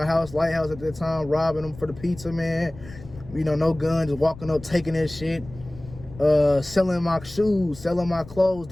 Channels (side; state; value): left; noise; rumble, 17 dB below the sound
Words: house, Lighthouse at that time, robbing them for the pizza, man. You know, no guns, walking up, taking that shit. Selling my shoes, selling my clothes